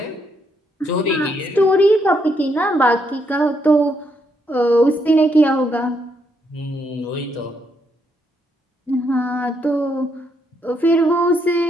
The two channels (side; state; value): both; normal; correlation 0.76